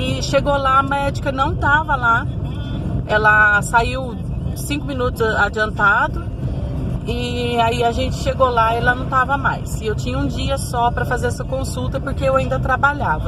chegou lá, a médica não estava lá, ela saiu 5 minutos adiantado, e aí a gente chegou lá e ela não estava mais. E eu tinha um dia só para fazer essa consulta, porque eu ainda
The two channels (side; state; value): both; identical; correlation 1.00